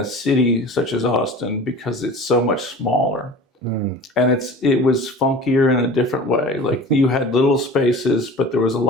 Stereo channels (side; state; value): both; normal; correlation 0.39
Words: city such as Austin, because it's so much smaller. And it was funkier in a different way. Like, you had little spaces, but there was a